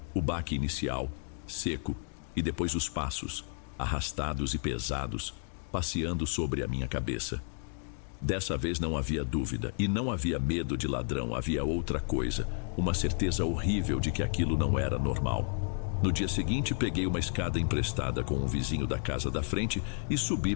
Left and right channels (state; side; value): silent; right; 57 dB below the other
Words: O baque inicial, seco, e depois os passos, arrastados e pesados, passeando sobre a minha cabeça. Dessa vez não havia dúvida, e não havia medo de ladrão, havia outra coisa, uma certeza horrível de que aquilo não era normal. No dia seguinte, peguei uma escada emprestada com um vizinho da casa da frente e subi